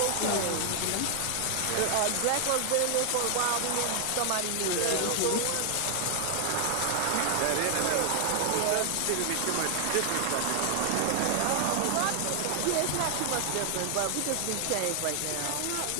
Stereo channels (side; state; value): both; different; correlation 0.00